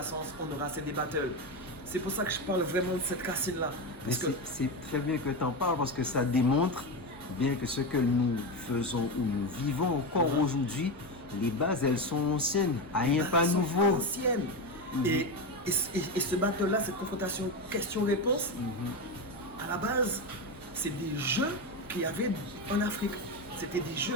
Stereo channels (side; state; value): both; normal; correlation 0.15